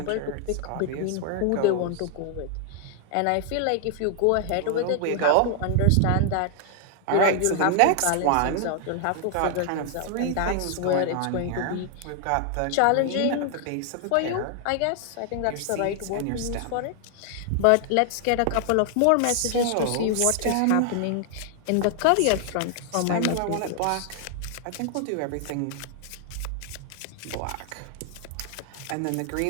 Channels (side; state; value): both; different; correlation 0.00